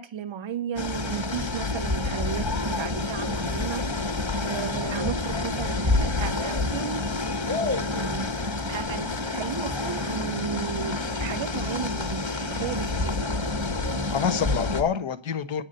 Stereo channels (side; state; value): left; late; 1.3 ms